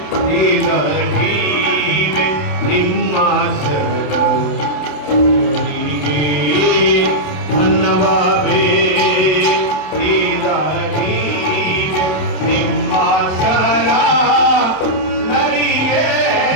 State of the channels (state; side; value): late; right; 27 ms